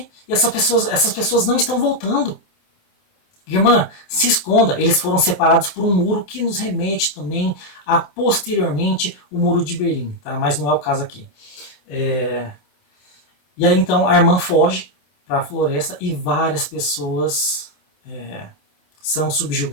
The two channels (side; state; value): right; late; 27 ms